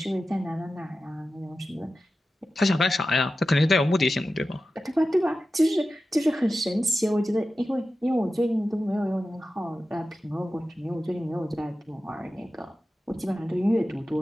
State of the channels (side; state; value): both; normal; correlation 0.93